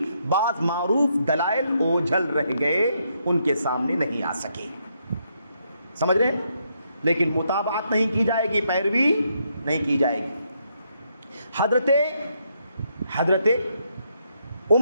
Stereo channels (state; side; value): inverted; both; correlation -0.76